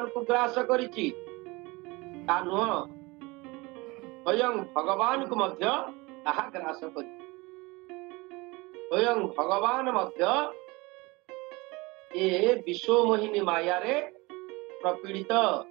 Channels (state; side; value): quieter; left; 23.9 dB